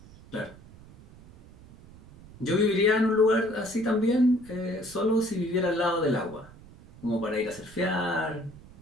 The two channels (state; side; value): noise; right; rumble, 21 dB below the sound